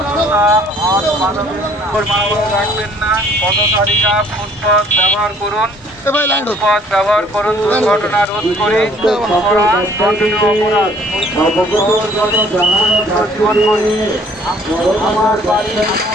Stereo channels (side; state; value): both; normal; correlation 0.58